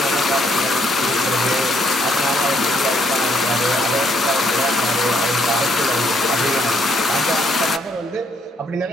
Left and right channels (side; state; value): both; normal; correlation 0.71